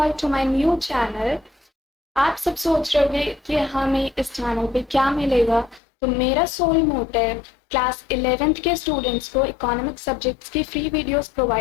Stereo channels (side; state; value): right; drops out; at 5.8 s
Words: to my new channel. आप सब सोच रहे होंगे कि हमें इस चैनल पे क्या मिलेगा। तो मेरा सोल मोटिव क्लास 11th के स्टूडेंट्स को इकोनॉमिक सब्जेक्ट्स की फ्री वीडियोस